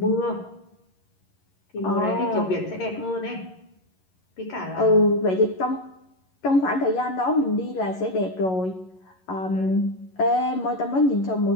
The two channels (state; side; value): late; right; 11 ms